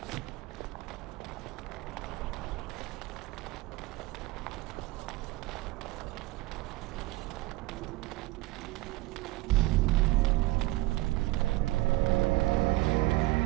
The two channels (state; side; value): quieter; left; 19.2 dB